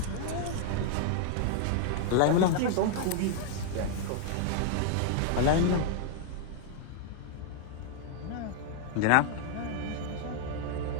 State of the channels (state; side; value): different; both; correlation 0.00